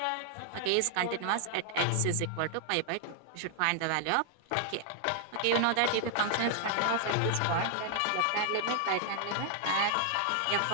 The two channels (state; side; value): different; both; correlation 0.00